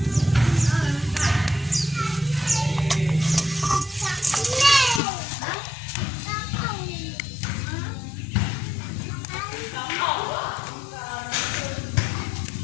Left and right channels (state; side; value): drops out; right; at 5.0 s